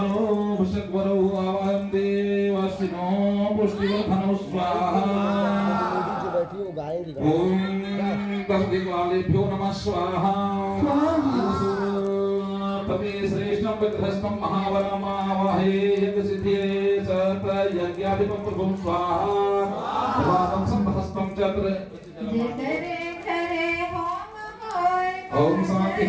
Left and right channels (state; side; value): identical; both; correlation 1.00